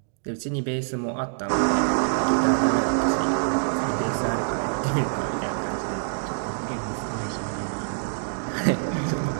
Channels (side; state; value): left; silent; digital silence